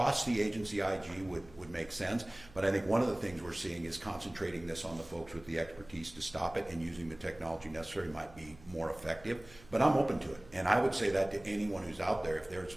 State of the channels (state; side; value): noise; right; hum, 22 dB below the sound